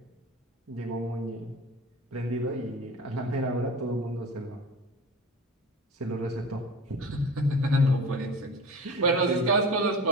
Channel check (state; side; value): normal; both; correlation 0.35